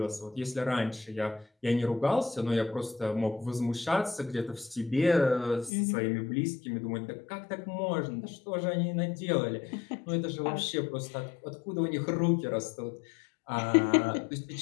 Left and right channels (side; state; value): right; drops out; at 5.7 s